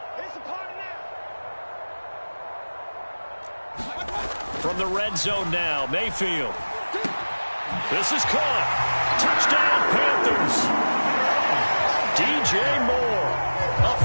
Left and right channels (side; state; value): both; inverted; correlation -1.00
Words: From the red zone now, Mayfield. This is caught. Touchdown, Panthers. DJ Moore, a